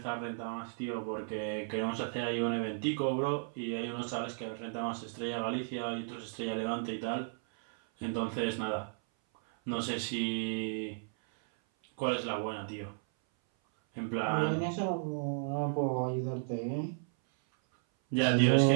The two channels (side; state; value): left; silent; 55 dB below the other